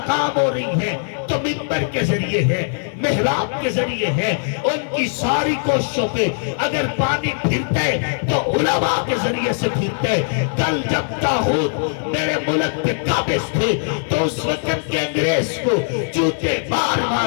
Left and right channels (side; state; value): right; silent; 56 dB below the other